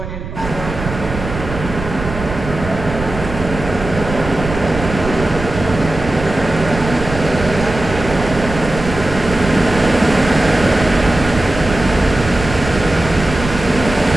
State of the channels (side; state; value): right; noise; rumble, 9 dB below the sound